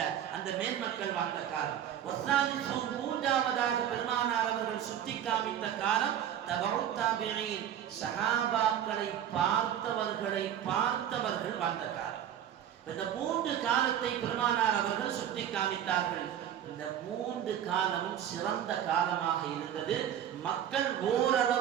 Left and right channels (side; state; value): left; quieter; 10.2 dB